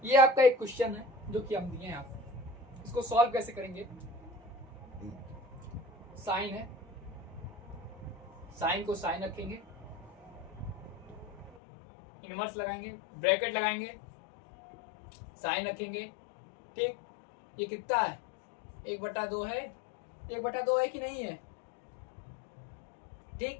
ये आपका एक क्वेश्चन है जो कि हम दिए हैं आपको। इसको सॉल्व कैसे करेंगे? साइन है, साइन को साइन रखेंगे, इनवर्स लगाएंगे, ब्रैकेट लगाएंगे, साइन रखेंगे। ठीक, ये कितना है? 1/2 है। 1/2 है कि नहीं है? ठीक,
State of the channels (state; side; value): drops out; right; at 11.6 s